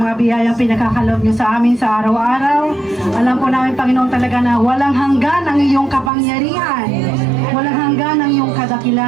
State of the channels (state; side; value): drops out; left; at 6.1 s